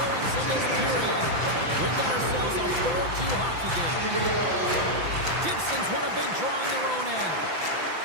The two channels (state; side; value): late; left; 5.9 ms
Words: in this period. We've got ourselves a 4-2 hockey game. Gibson's won a big draw on their own end.